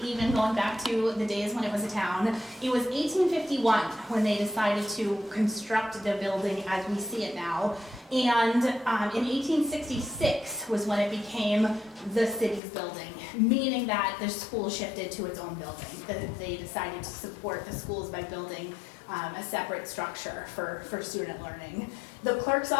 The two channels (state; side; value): drops out; right; at 12.6 s